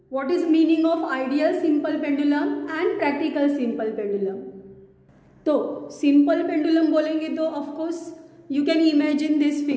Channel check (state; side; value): identical; both; correlation 1.00